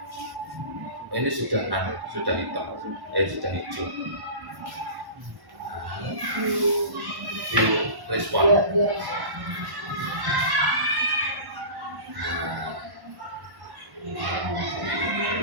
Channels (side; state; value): left; late; 1.1 ms